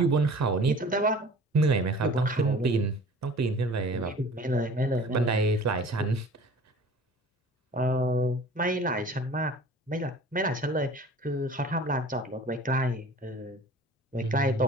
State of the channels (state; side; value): normal; both; correlation 0.45